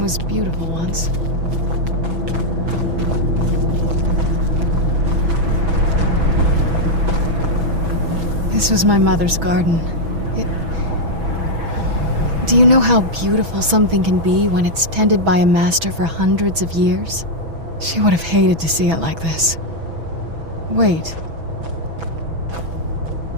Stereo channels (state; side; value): late; left; 6.1 ms